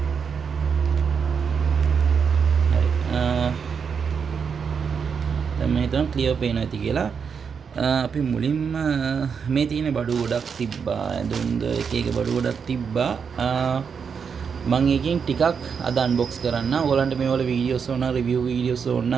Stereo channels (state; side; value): quieter; left; 6.4 dB